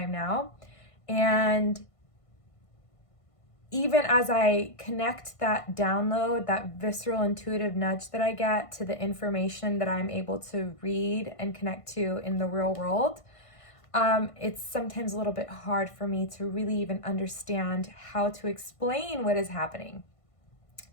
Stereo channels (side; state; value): right; late; 1.5 ms